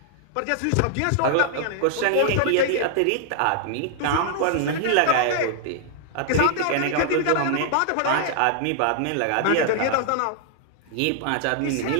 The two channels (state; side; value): different; both; correlation -0.01